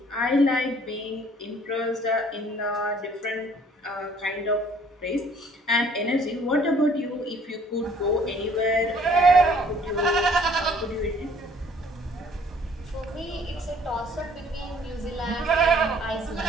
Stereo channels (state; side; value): normal; both; correlation 0.57